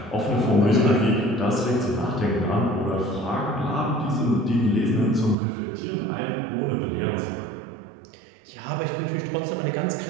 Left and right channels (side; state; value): left; drops out; at 5.4 s